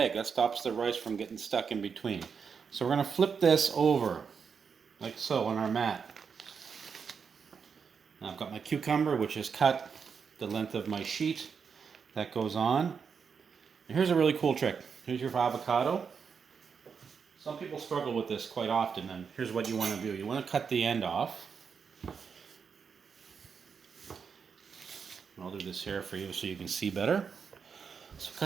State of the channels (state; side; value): quieter; left; 6.2 dB